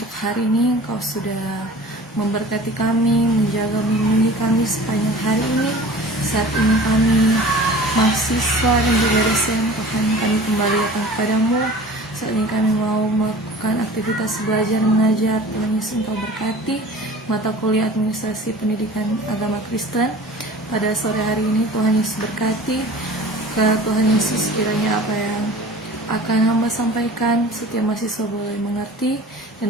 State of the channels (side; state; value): both; normal; correlation 0.42